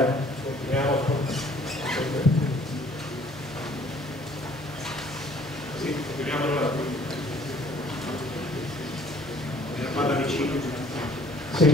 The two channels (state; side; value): noise; right; hum, 23 dB below the sound